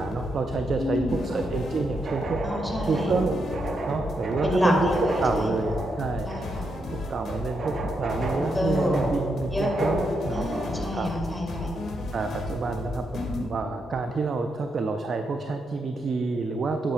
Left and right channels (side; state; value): both; normal; correlation 0.81